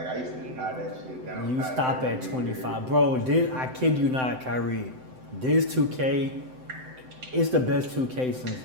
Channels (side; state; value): left; late; 7.8 ms